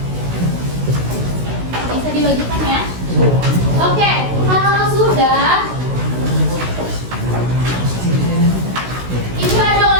Bisa dibagikan ya. Oke, kalau sudah, ini ada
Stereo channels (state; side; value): late; left; 16 ms